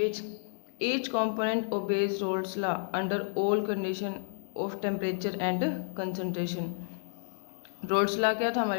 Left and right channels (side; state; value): right; silent; digital silence